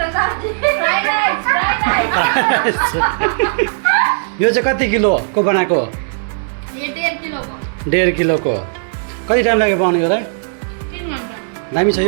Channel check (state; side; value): silent; left; 69 dB below the other